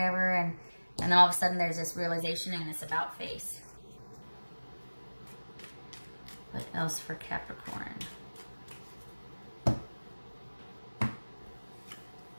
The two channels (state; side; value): inverted; both; correlation -1.00